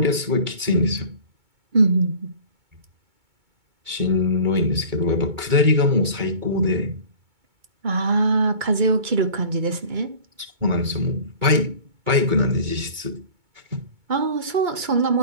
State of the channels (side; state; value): left; late; 2.2 ms